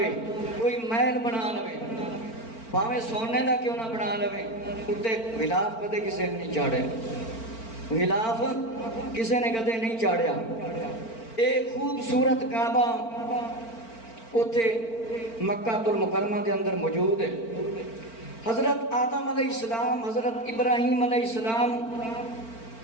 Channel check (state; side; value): late; right; 4.4 ms